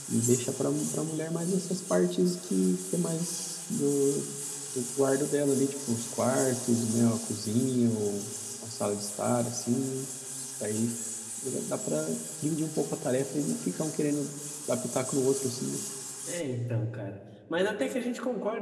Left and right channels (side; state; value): both; identical; correlation 1.00